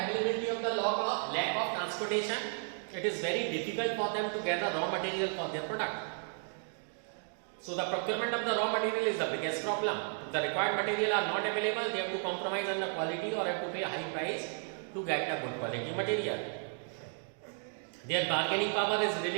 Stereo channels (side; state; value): left; silent; 55 dB below the other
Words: of the lack of transportation, it is very difficult for them to gather raw material for their product. So the procurement of the raw material is the biggest problem. If the required material are not available, they have to compromise on the quality or have to pay a high price to get the good quality material. Their bargaining power is